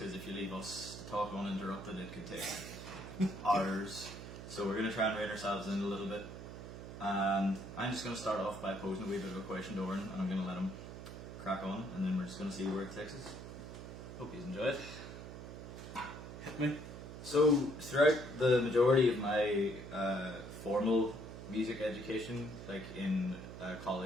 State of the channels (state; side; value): noise; right; hum, 10 dB below the sound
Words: if you leave us to talk uninterrupted it could take hours. So we're going to try and rein ourselves in a little bit. And I'm just going to start off by posing a wee bit of a question to Oren, and I'm going to let him crack on, and then we're just going to see where it takes us. Hope you enjoy it. Hit me. So, throughout the majority of my formal music education, like in